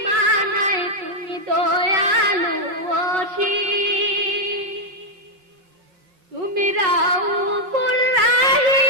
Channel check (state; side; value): late; left; 5.7 ms